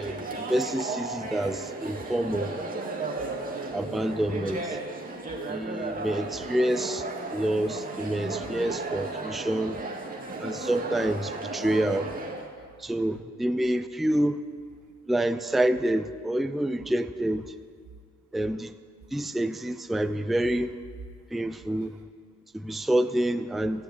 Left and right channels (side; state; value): both; normal; correlation 0.84